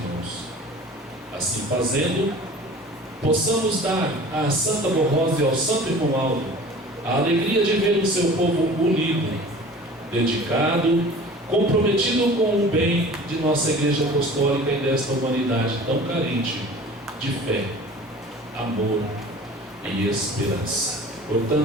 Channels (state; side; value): normal; both; correlation 0.43